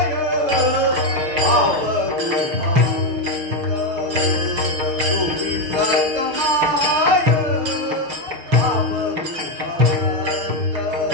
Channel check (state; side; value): late; left; 6.6 ms